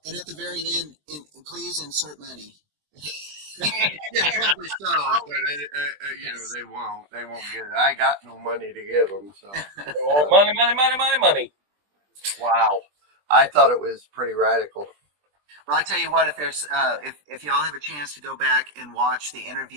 and at the very end, please insert money. Yeah, probably so, but they won't get it. I got no money to give them, so money. Wow, I thought it was pretty radical. Well, I tell you what, if there's if y'all have a chance to go back and watch the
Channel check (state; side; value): late; left; 20 ms